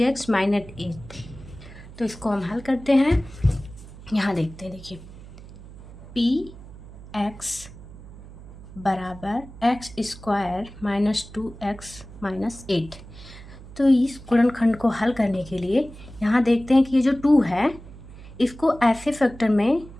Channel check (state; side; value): noise; right; hum, 17 dB below the sound